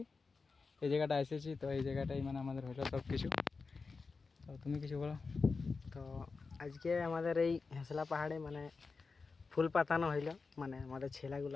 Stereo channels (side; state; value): right; quieter; 4.4 dB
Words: এই জায়গাটা এসেছি। তো এই জায়গাটাই মানে আমাদের হলো সব কিছু। তো তুমি কিছু বলো। তো আজকে আমাদের এই হেঁসলা পাহাড়ে মানে ফুল পাতানো হইল, মানে আমাদের